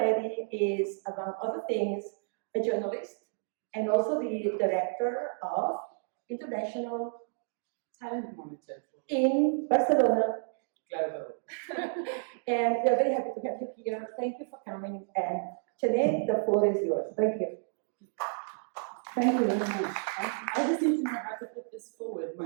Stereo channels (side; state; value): left; silent; digital silence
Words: is, among other things, a journalist and also the director of International Talent Monitor in Barcelona. Global. And we're very happy to have you here. Thank you for coming. And Chené, the floor is yours. Thank you. Thank you very much. I just need to know how to put this forward,